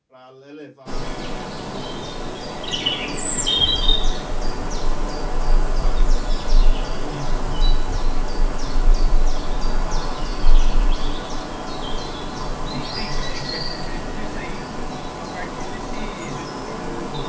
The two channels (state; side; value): identical; both; correlation 1.00